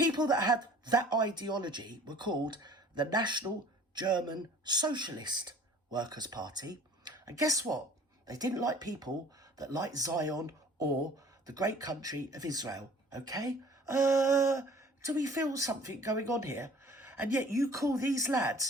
that had that ideology were called the National German Socialist Workers' Party. And guess what? They didn't like people that liked Zion or the great country of Israel. Okay? Do we feel something going on here? And yet you call these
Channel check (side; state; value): both; normal; correlation 0.50